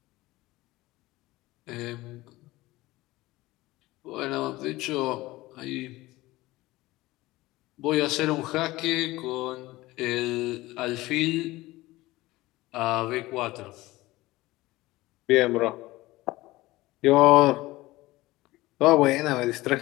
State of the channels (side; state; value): right; quieter; 19.0 dB